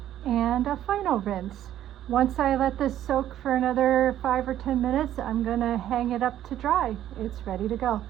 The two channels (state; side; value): quieter; left; 11.9 dB